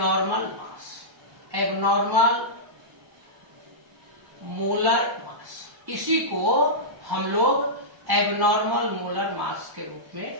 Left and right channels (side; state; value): left; late; 1.1 ms